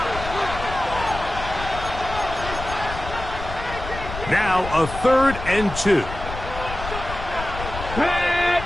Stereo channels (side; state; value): left; noise; rumble, 9 dB below the sound